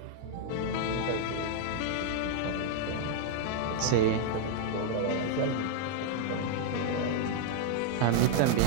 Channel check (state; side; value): different; both; correlation 0.00